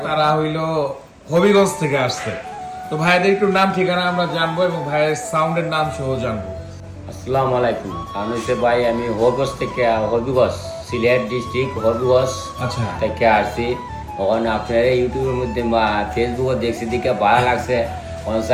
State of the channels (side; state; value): both; identical; correlation 1.00